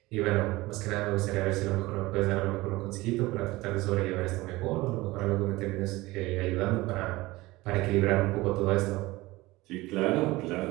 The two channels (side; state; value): left; quieter; 20.1 dB